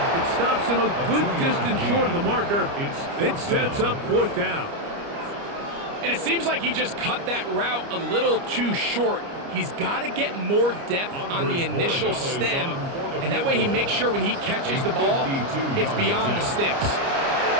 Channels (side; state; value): left; late; 29 ms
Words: It stops him a good distance short of the marker. It sets up 4th down. And it seems like he just cut that route a little too short. He's got to get more depth on the initial stem, and that way he makes sure when he catches the ball, it's beyond the sticks.